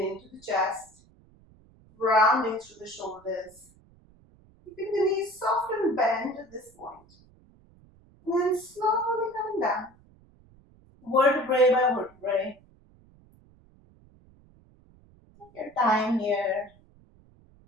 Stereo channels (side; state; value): right; noise; rumble, 28 dB below the sound